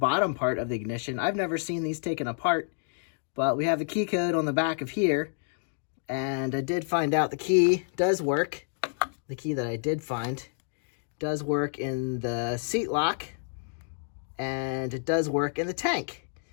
part of the ignition. I've never seen these taken apart, but we have the key code on the back of here. And I did find out the key does work. The key that I did find does work in the seat lock, and it does work in the tank.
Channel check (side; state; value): right; silent; digital silence